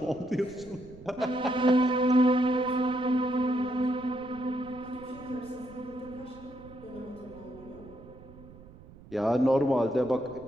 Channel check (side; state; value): right; noise; rumble, 20 dB below the sound